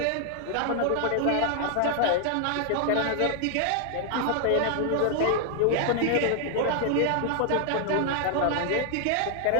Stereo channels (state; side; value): different; both; correlation 0.00